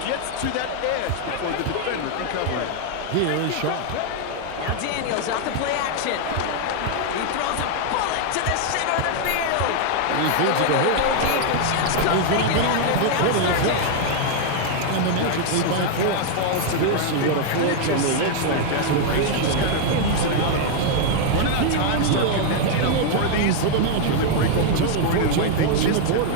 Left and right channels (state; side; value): different; both; correlation 0.00